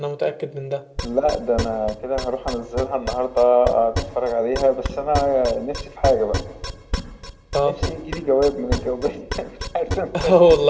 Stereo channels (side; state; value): both; identical; correlation 1.00